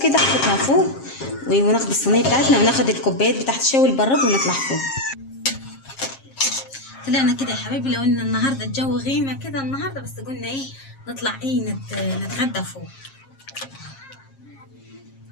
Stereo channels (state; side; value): late; right; 7.5 ms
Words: كده، احطها فوق وناخد الصينيه بتاعتنا وناخد الكوبايات بتاعت الشاي البراد ونطلع فوق. طلعنا كده يا حبايبي، لو ان النهارده الجو غيمه كده النهارده، بس قلنا ايه نطلع ايه نتغدى فوق.